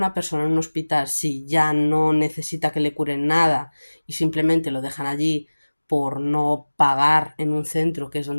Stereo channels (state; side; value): inverted; both; correlation -1.00